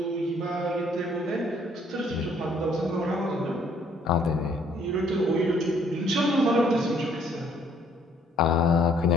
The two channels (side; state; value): both; normal; correlation 0.62